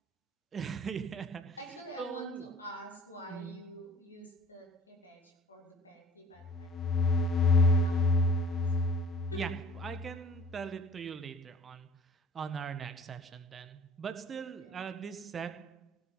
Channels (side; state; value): both; normal; correlation 0.49